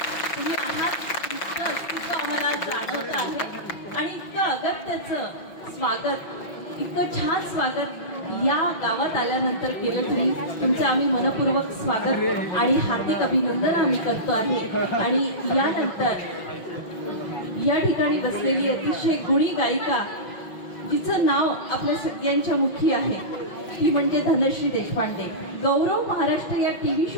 तुम्ही आहात इतकं अस्तित्व आम्हाला जाणवत आहे आणि इतकं अगत्याचं स्वागत, इतकं छान स्वागत या गावात आल्यानंतर केलं तुम्ही. तुमचं आम्ही मनपूर्वक स्वागत आणि हार्दिक अभिनंदन आम्ही करतो आहे. आणि यानंतर या ठिकाणी बसलेली अतिशय गुणी गायिका, जिचं नाव आपल्या सगळ्यांच्या मुखी आहे, ती म्हणजे धनश्री देशपांडे. गौरव महाराष्ट्र या टीव्ही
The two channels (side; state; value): right; late; 5.7 ms